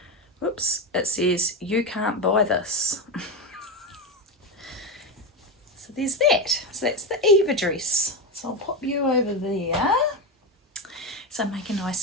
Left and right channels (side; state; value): both; normal; correlation 0.14